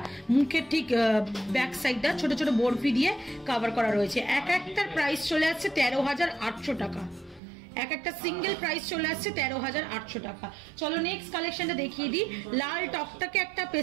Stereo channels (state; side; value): drops out; left; at 7.4 s